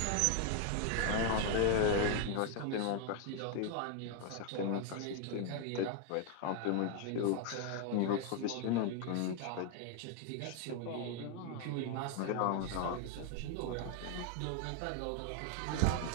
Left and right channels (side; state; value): both; different; correlation 0.00